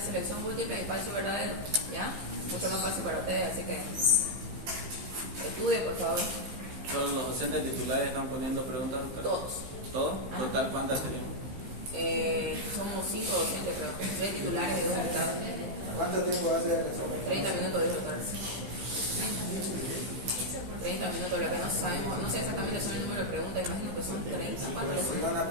selección múltiple y falso y verdadero, ya. Mucho más fácil para ustedes, así que estudien, por favor. ¿Todos los docentes titulares están poniendo preguntas? Todos. ¿Todos? ¿Total cuántas tenemos? Somos 5 docentes, creo. 3 titulares y 2 alumnos. ¿Cuánto tiempo va a ser el examen? 30 minutos, dijo el doctor Arce. 30 minutos, lo que no sabemos, no sé exactamente son el número de preguntas, imagino que son 30. ¿Cuántos Pero si van a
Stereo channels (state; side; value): late; left; 15 ms